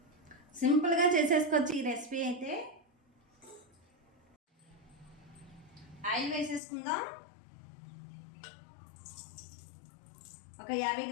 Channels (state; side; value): drops out; right; at 6.6 s